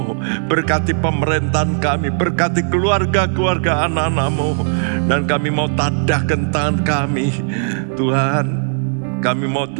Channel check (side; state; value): left; silent; 68 dB below the other